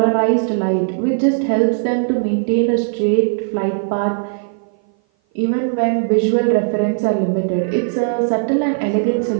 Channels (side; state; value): left; silent; 57 dB below the other